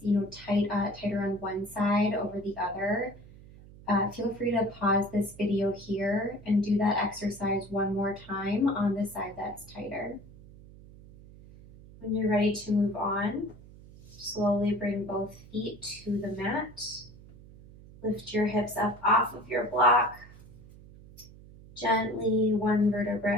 tighter on one side over the other, feel free to pause this video here and do that exercise one more time on the side that's tighter. When you're ready to move on, slowly bring both feet to the mat. Lift your hips up off of your block. Gently, one vertebra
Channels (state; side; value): noise; right; hum, 20 dB below the sound